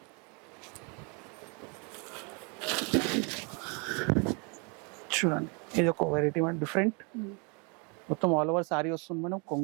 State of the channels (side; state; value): left; quieter; 33.5 dB